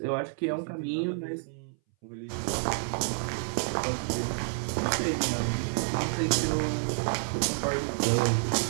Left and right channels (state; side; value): silent; left; 58 dB below the other